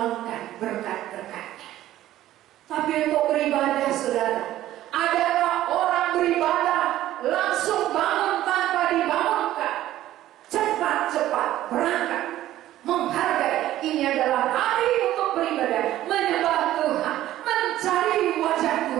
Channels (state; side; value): quieter; left; 13.9 dB